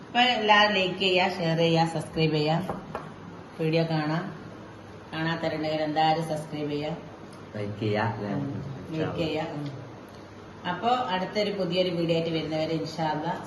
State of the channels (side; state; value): both; identical; correlation 1.00